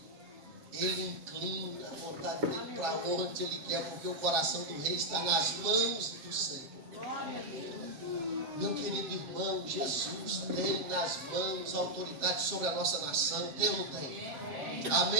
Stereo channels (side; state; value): left; late; 7.4 ms